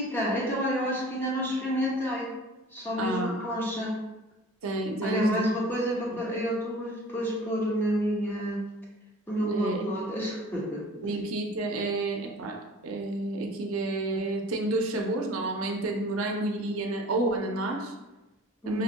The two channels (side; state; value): both; normal; correlation 0.45